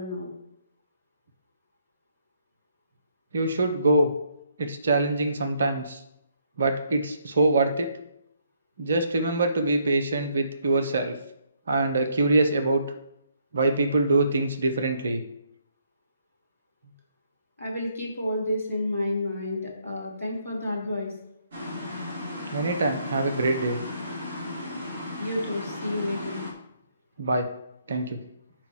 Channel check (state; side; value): inverted; both; correlation -0.71